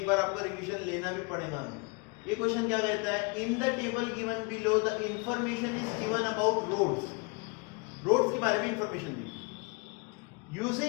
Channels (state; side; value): quieter; right; 30.6 dB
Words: बार आपका रिवीजन लेना भी पड़ेगा। ये क्वेश्चन क्या कहता है, in the table given below the information is given about roads के बारे में इंफॉर्मेशन दी।